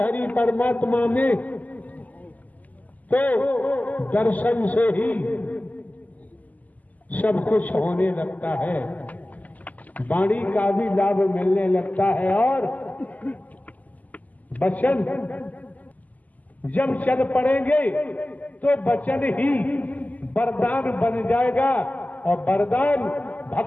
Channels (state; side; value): late; right; 0.079 ms